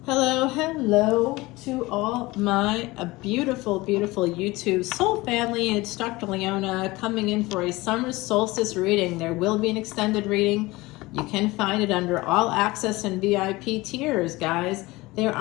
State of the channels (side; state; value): right; quieter; 21.0 dB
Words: Hello to all my beautiful YouTube soul family. It's Dr. Leona coming in for a summer solstice reading. There will be an extended reading. You can find it under all access and VIP tiers, guys. There